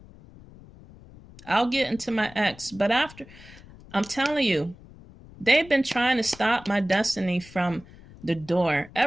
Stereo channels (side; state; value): left; noise; rumble, 21 dB below the sound